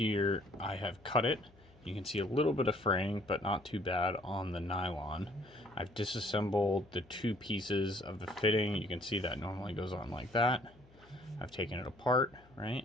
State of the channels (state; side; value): noise; left; hum, 26 dB below the sound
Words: I have cut it. You can see a little bit of fraying, but not too bad on the nylon. I've disassembled the two pieces of the fitting. You can see that normally goes on like that. I've taken it apart, right?